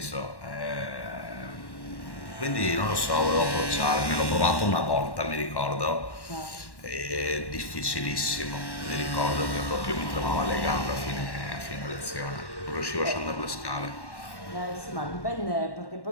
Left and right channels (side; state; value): right; late; 1.1 ms